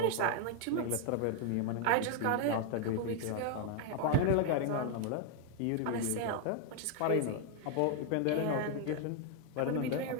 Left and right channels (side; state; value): both; different; correlation 0.00